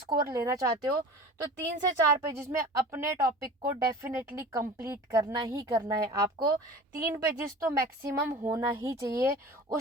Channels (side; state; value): both; normal; correlation 0.39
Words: लेना चाहते हो तो 3 से 4 पेजेस में अपने टॉपिक को डेफिनेटली कंप्लीट करना ही करना है। आपको 3 पेजेस तो मैक्सिमम होना ही चाहिए,